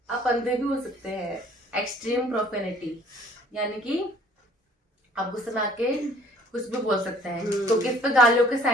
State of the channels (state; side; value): normal; both; correlation 0.56